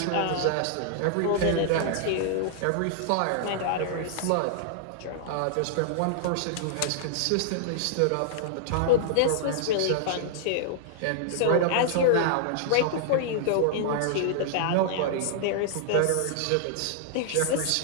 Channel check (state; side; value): different; both; correlation -0.01